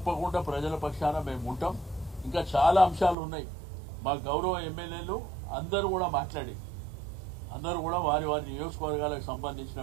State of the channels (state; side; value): drops out; left; at 3.2 s